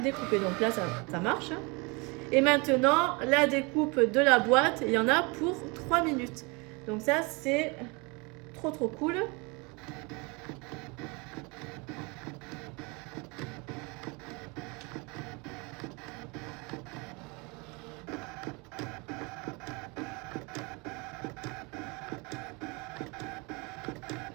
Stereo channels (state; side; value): quieter; left; 28.5 dB